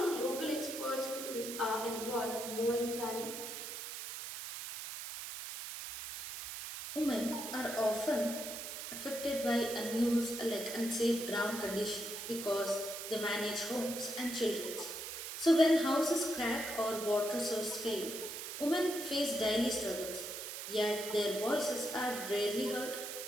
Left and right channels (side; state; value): right; noise; hiss, 7 dB below the sound